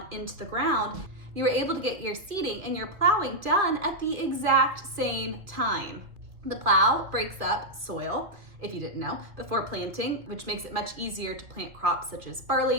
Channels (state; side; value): late; left; 2.2 ms